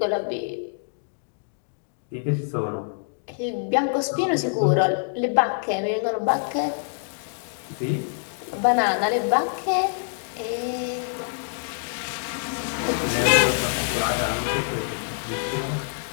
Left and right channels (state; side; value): silent; right; digital silence